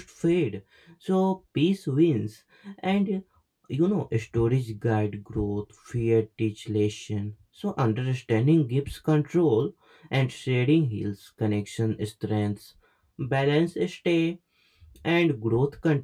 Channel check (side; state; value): both; identical; correlation 1.00